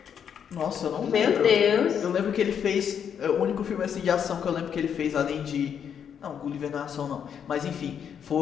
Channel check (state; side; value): quieter; right; 8.0 dB